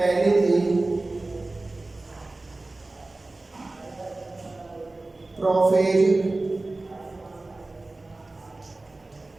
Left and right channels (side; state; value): left; quieter; 3.0 dB